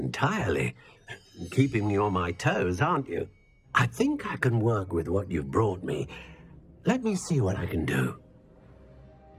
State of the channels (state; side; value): identical; both; correlation 1.00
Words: Keeping me on my toes, aren't you? I think I can work with what you've brought me. Let me see what I can do.